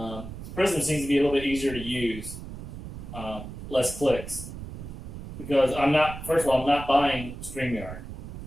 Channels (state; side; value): noise; right; rumble, 11 dB below the sound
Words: Prism seems to be a little bit easier to use, less clicks. Because first of all, I'm not buying StreamYard.